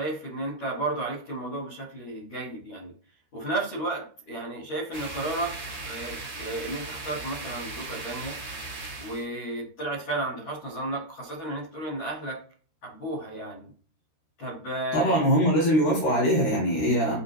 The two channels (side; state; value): right; late; 13 ms